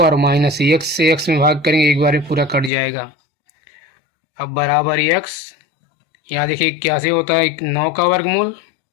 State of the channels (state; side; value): drops out; right; at 2.7 s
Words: माइनस एक्स से एक्स में भाग करेंगे एक बार में पूरा कट जाएगा। अब बराबर एक्स, यहाँ देखिए 81 होता है 9 का वर्गमूल,